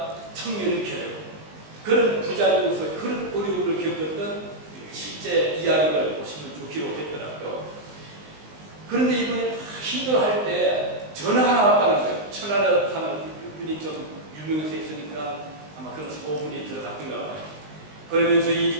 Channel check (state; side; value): late; left; 19 ms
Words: 청년이 되고 그런 부작용에서 그런 어려움을 겪었던 실제 이야기를 보시면 좀 기록했더라고요. 그런데 이분이 힘들어할 때 전화가 하나 왔다는 거예요. 천안에 사는 분이 좀 유명해서 있으니까 아마 그런 소문이 들어갔던가 봐요. 그러면서